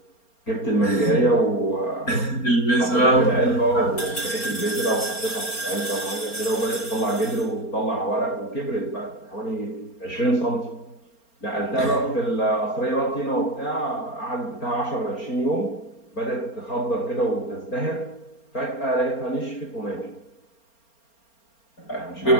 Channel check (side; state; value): right; late; 4.3 ms